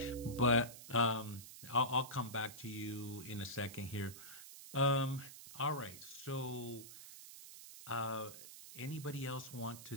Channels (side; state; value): right; noise; hiss, 14 dB below the sound